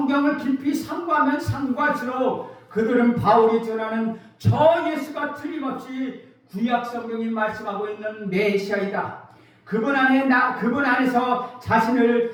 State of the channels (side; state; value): both; identical; correlation 1.00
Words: 깊이 상고하면 상고할수록 그들은 바울이 전하는 저 예수가 틀림없이 구약 성경이 말씀하고 있는 메시아이다. 그분 안에서